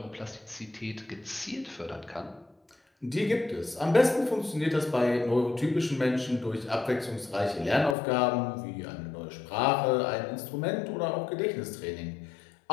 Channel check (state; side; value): drops out; right; at 8.0 s